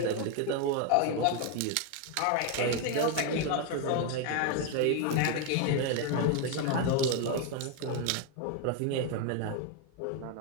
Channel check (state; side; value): different; both; correlation 0.01